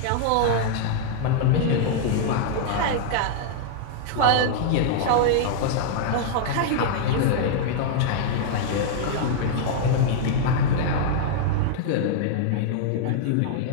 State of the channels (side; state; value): both; different; correlation -0.01